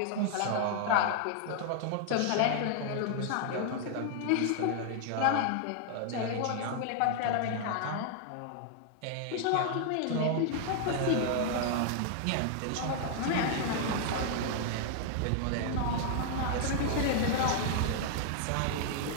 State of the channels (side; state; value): both; different; correlation 0.00